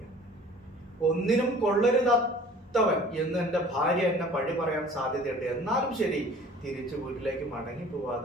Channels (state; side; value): normal; both; correlation 0.48